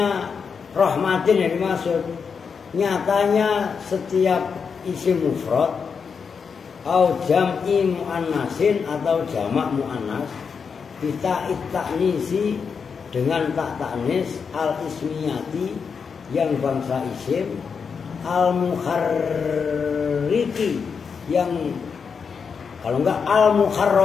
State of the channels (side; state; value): right; quieter; 5.9 dB